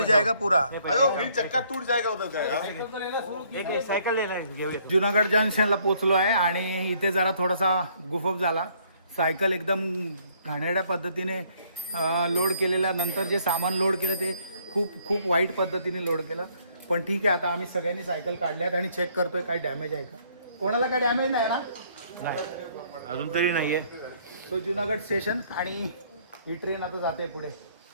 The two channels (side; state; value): both; inverted; correlation -0.65